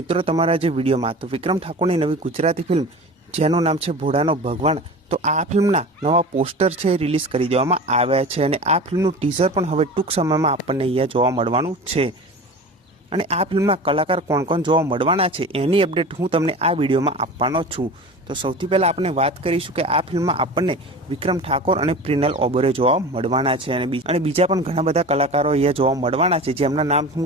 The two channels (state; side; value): normal; both; correlation 0.34